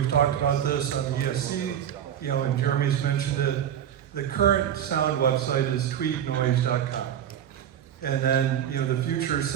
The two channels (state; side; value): quieter; left; 9.8 dB